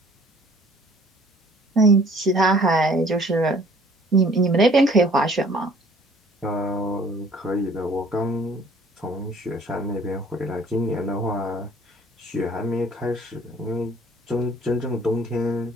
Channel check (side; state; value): both; normal; correlation 0.55